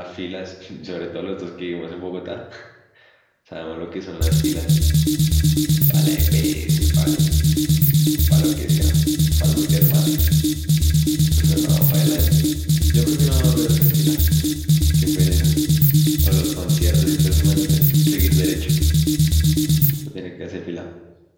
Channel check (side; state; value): both; identical; correlation 1.00